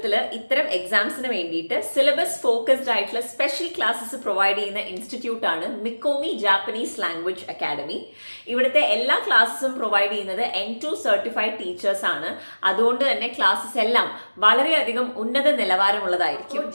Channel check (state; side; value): inverted; both; correlation -1.00